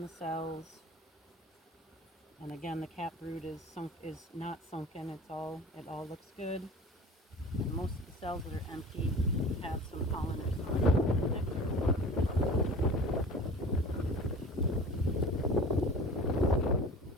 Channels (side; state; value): both; normal; correlation 0.40